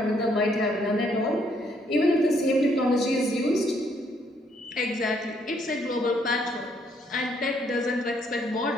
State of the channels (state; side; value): normal; both; correlation 0.70